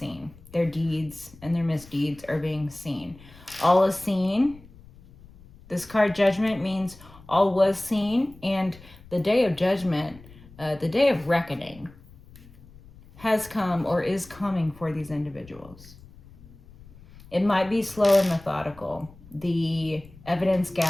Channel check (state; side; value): noise; left; rumble, 22 dB below the sound